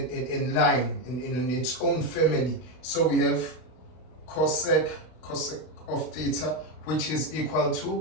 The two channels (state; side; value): late; right; 32 ms